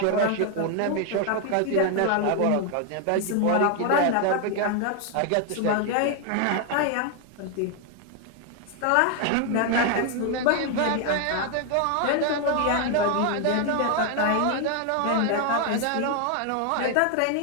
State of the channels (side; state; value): both; different; correlation 0.00